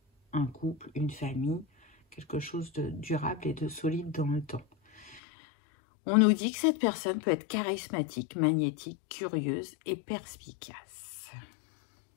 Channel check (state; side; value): drops out; right; at 5.2 s